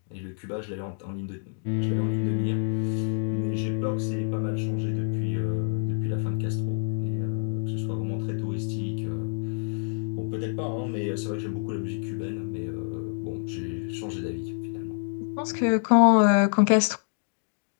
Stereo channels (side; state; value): right; silent; digital silence